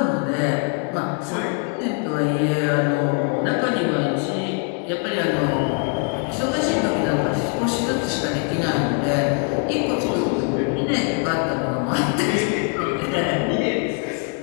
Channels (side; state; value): right; quieter; 38.1 dB